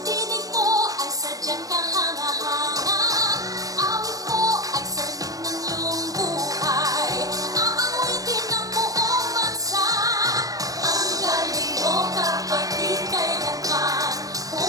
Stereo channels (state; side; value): late; left; 0.17 ms